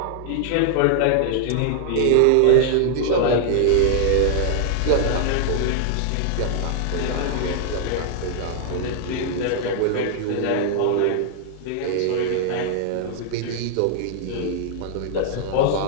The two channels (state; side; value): different; both; correlation 0.00